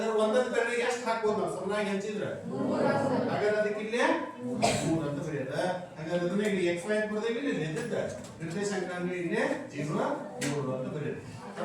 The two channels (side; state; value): both; identical; correlation 1.00